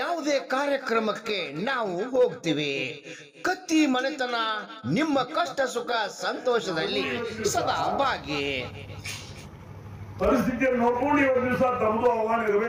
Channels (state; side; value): identical; both; correlation 1.00